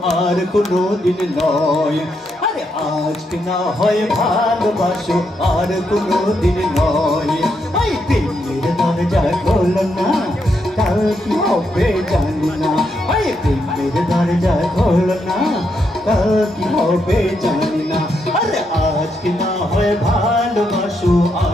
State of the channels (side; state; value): both; normal; correlation 0.80